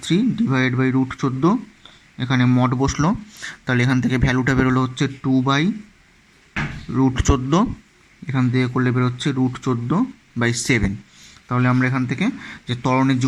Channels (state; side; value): identical; both; correlation 1.00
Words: ডিভাইডেড বাই √14, এখানে মড বসলো, তাহলে এখান থেকে ভ্যালুটা বেরোলো হচ্ছে 2/√14, এখান থেকে করলে বেরোচ্ছে √14/7। তাহলে আমরা এখান থেকে যে ত্বরণের যে